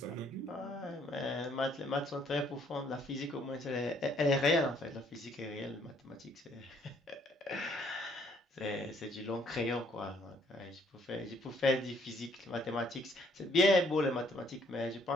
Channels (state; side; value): normal; both; correlation 0.65